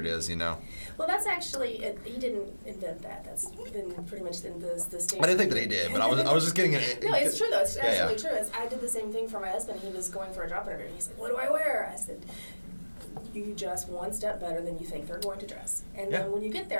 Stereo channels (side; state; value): both; inverted; correlation -1.00